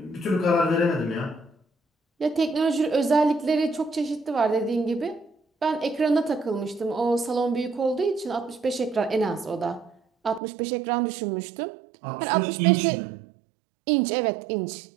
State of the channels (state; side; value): drops out; left; at 10.4 s